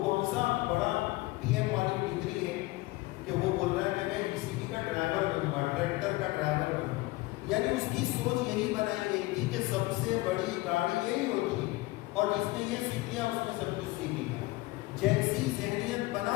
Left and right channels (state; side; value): quieter; right; 20.7 dB